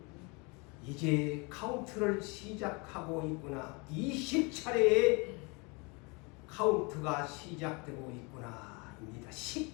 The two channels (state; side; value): quieter; right; 29.5 dB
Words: 이제 카운트를 시작하고 있구나. 20차례의 카운트가 시작되고 있구나 입니다.